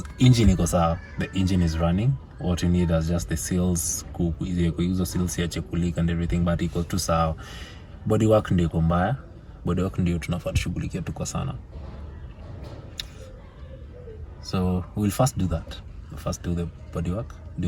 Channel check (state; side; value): identical; both; correlation 1.00